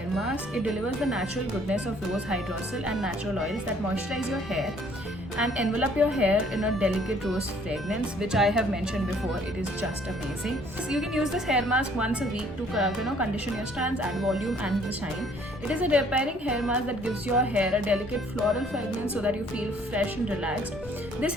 mask. It delivers the natural goodness of rose hydrosol and natural oils that moisturize your hair and envelop your hair in a delicate rose fragrance, which I have mentioned before. It is just amazing. So you can use this hair mask once a week to condition your strands, add volume and the shine. It is a repairing hair mask that gives your hair a delicate floral fragrance so that you feel fresh and relaxed. This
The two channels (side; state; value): both; normal; correlation 0.60